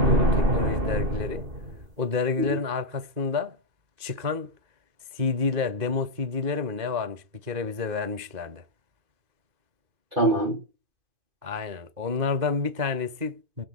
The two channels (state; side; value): late; left; 2.5 ms